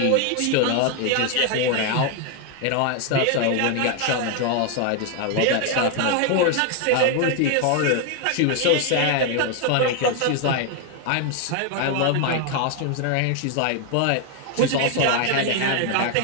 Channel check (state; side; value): different; both; correlation 0.01